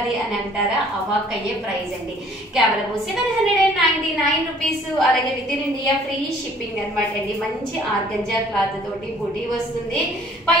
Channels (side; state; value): both; normal; correlation 0.56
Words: అని అంటారా? అవాక్ అయ్యే ప్రైస్ అండి. కేవలం 799 రూపీస్, అలాగే with in India free shipping అనమాట అండి. మంచి ఆర్గంజా క్లాత్ తోటి బుటీ వస్తుంది,